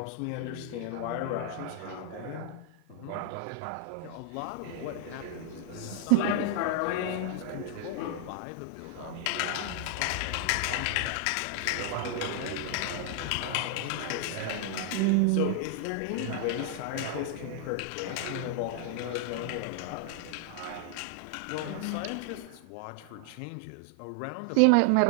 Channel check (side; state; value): both; different; correlation 0.00